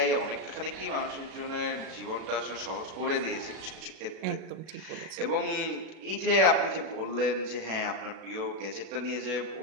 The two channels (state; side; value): late; left; 36 ms